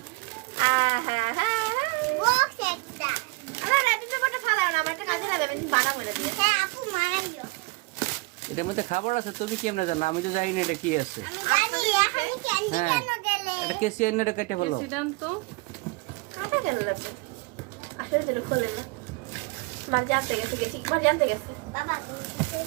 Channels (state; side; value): quieter; left; 26.1 dB